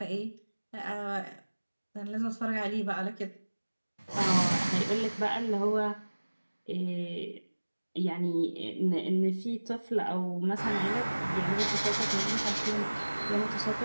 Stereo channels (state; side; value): inverted; both; correlation -1.00